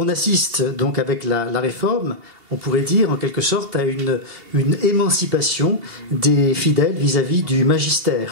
assiste donc avec la réforme, on pourrait dire en quelque sorte à une émancipation des fidèles vis-à-vis du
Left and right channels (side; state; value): left; late; 2.7 ms